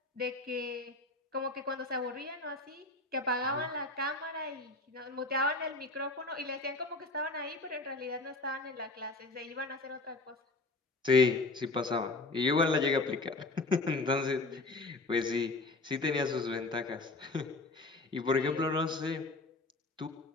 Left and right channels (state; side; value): quieter; right; 3.1 dB